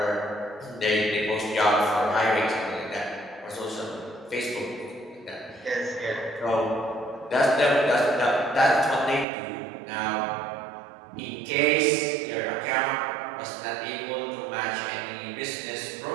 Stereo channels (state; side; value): drops out; left; at 9.2 s